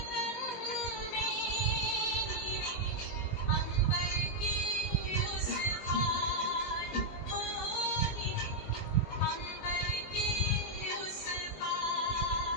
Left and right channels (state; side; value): late; right; 19 ms